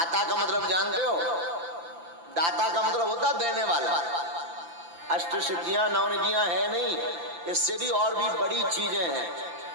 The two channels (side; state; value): left; late; 5.9 ms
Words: का मतलब जानते हो? दाता का मतलब होता देने वाला। अष्ट सिद्धियां 9 निधियां है नहीं, इससे भी और भी बड़ी चीजें हैं।